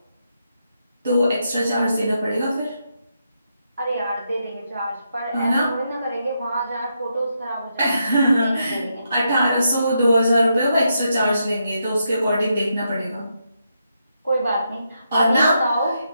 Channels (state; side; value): inverted; both; correlation -0.81